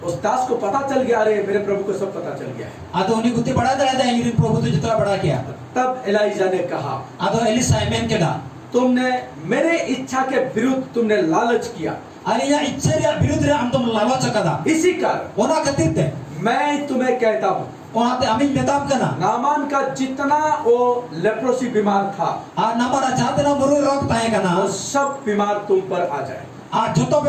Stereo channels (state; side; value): identical; both; correlation 1.00